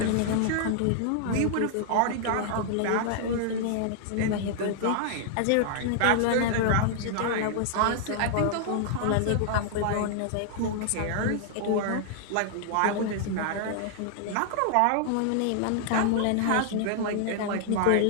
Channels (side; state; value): both; different; correlation -0.01